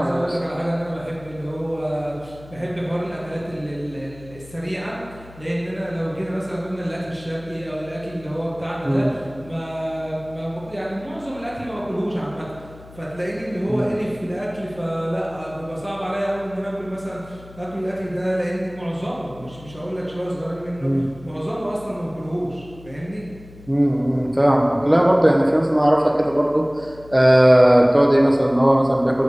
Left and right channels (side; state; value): left; noise; hum, 20 dB below the sound